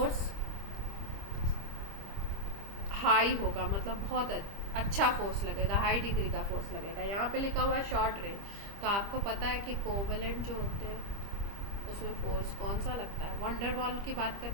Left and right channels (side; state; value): left; late; 25 ms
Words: हाई होगा, मतलब बहुत अच्छा फोर्स लगेगा, हाई डिग्री का फोर्स लगेगा। यहाँ पे लिखा हुआ है शॉर्ट रेंज, तो आपको पता है कि कोवेलेंट जो होते हैं उसमें फोर्स कौन सा लगता है, वंडर वॉल की बात